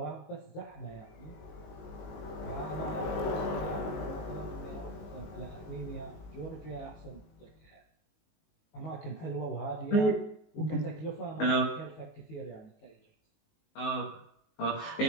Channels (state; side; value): late; right; 19 ms